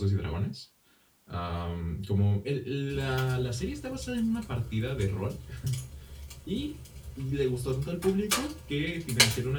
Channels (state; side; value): identical; both; correlation 1.00